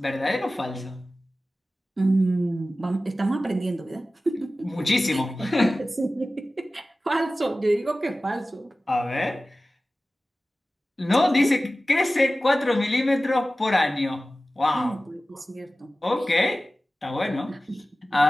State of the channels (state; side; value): normal; both; correlation 0.96